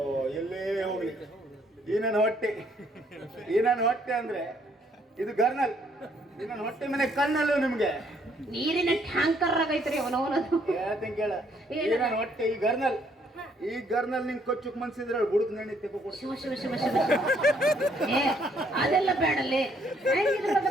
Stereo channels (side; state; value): both; normal; correlation 0.67